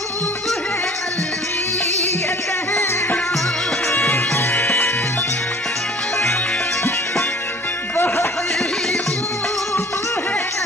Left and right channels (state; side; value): normal; both; correlation 0.49